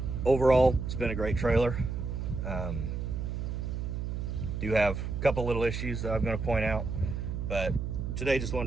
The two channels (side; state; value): right; noise; hum, 3 dB below the sound